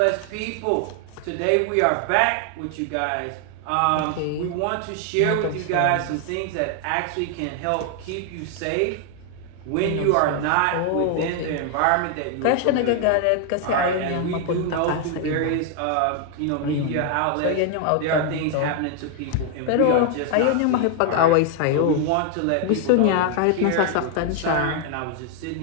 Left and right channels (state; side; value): different; both; correlation 0.00